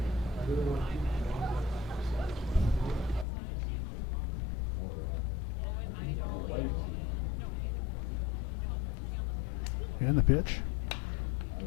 And the pitch.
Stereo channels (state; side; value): drops out; right; at 3.2 s